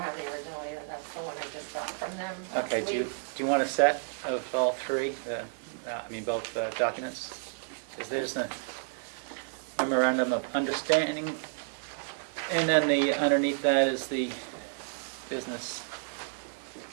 have the original either. That's the one I just got from them. Okay, do you want a set of all 3, both documents? Because there's a memorandum of understanding, and then underneath that is the business.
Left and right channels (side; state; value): left; silent; digital silence